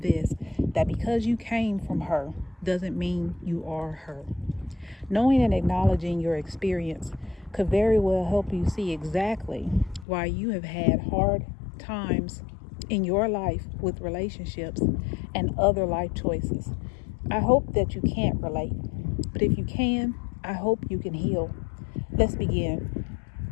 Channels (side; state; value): right; drops out; at 10.1 s